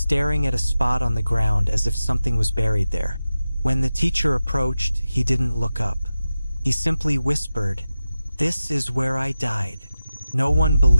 at a spot on the ground as if something was buried there. When the teacher approached, he didn't look up. He simply whispered, "This is where I died." No one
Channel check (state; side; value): inverted; both; correlation -0.94